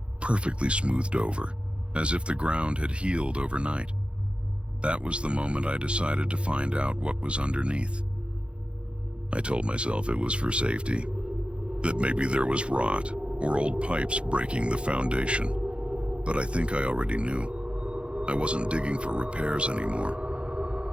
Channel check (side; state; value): left; late; 0.058 ms